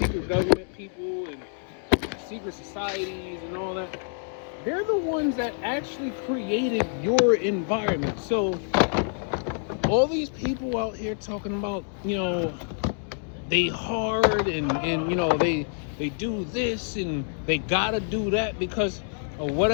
government people and secret societies and all that, they're the ones that actually created your environment. So all these people out here talking about, they hard and they do this and they gotta do that because of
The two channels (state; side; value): silent; right; 60 dB below the other